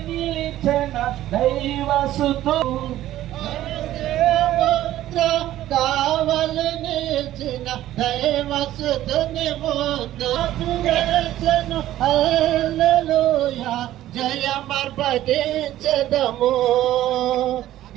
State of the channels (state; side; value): quieter; left; 13.7 dB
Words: నిలిచిన దైవసుతో కావలి నిలిచిన దైవసుతుని ముందు హల్లెలూయా జయమర్పటించెదము.